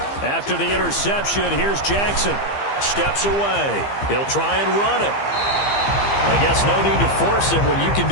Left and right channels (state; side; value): late; right; 15 ms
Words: After the interception, here's Jackson. Steps away. He'll try and run it. I guess no need to force it when you can